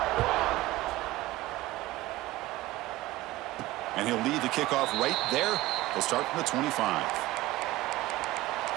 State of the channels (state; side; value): quieter; left; 17.5 dB